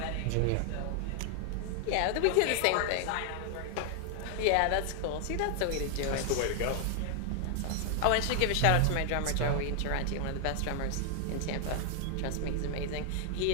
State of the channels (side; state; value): both; different; correlation 0.00